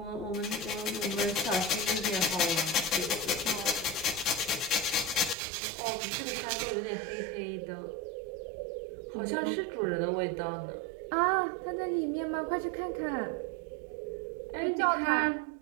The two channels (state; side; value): drops out; left; at 5.4 s